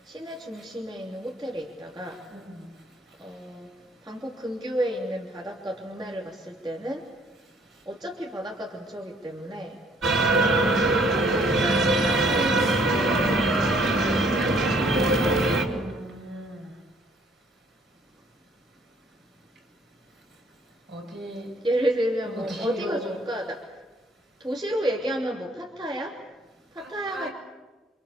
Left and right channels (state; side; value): normal; both; correlation 0.62